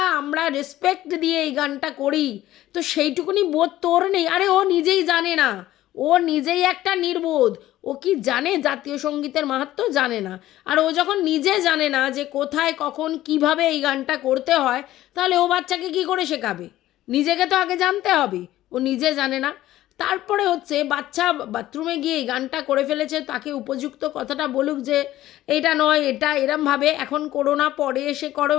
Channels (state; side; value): quieter; right; 14.7 dB